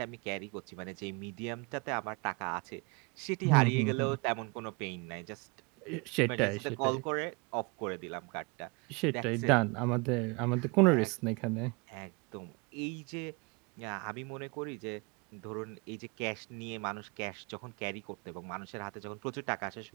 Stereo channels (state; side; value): quieter; left; 29.3 dB